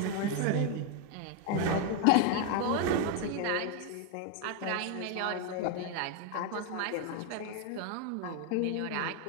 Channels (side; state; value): both; different; correlation 0.01